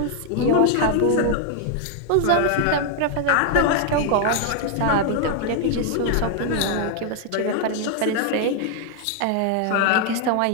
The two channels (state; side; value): different; both; correlation 0.00